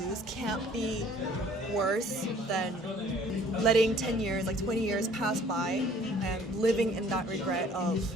can't be worse than letting 10 years, 20 years pass by and living in that regret of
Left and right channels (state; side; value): normal; both; correlation 0.54